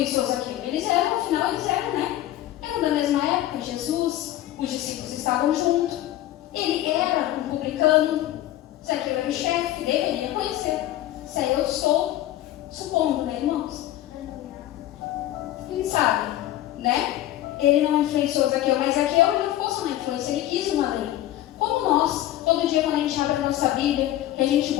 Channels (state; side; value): quieter; right; 14.0 dB